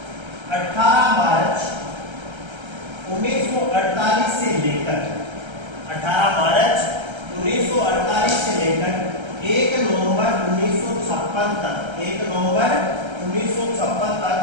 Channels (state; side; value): late; left; 1.3 ms